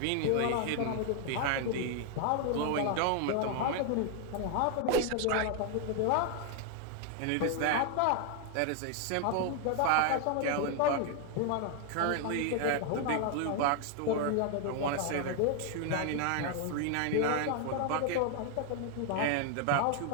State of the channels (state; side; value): different; both; correlation 0.00